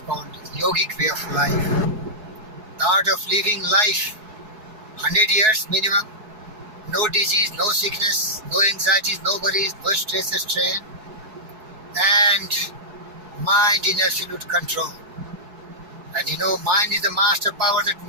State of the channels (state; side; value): late; left; 4.7 ms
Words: called yogic way of life. The art of living life 100 years minimum, no disease, no sickness, no anxieties, no worries, no stress or strain, and mind in absolute control. And you know, mind is the master power that